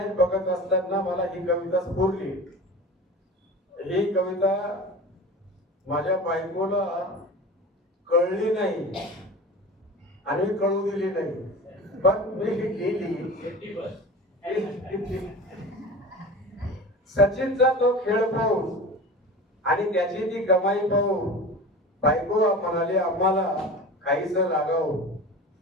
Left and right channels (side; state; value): both; normal; correlation 0.34